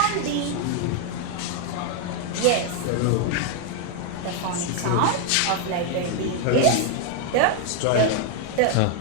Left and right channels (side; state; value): both; different; correlation 0.00